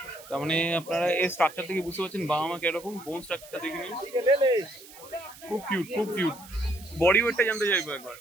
তার মানে আপনারা এই স্ট্রাকচার থেকে বুঝতে পারছেন বাবা মা কিরকম। বোন স্ট্রাকচারটা দেখে নিন, খুব কিউট, খুব কিউট। বডি ওয়েটটা জানতে চাইবো একবার।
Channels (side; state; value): right; noise; hiss, 19 dB below the sound